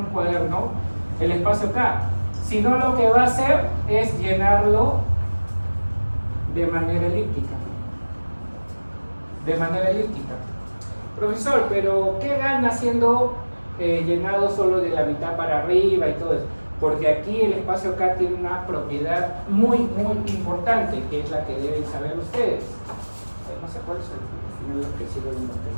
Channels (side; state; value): both; inverted; correlation -1.00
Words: cuaderno, el espacio K, sino lo que va a hacer es llenarlo de manera elíptica. Profesor, pero ¿qué gana siendo llenado solo de la mitad para arriba y todo eso? Porque aquí el espacio K tiene una propiedad muy importante, que es la que deben saber ustedes. No sé cuál es el final lo que sigo viendo.